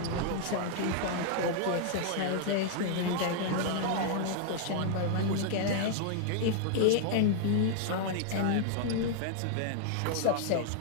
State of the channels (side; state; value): both; different; correlation 0.00